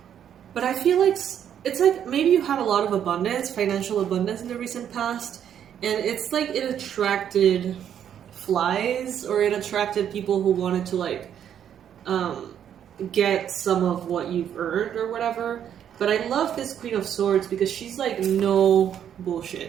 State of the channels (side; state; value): left; quieter; 9.4 dB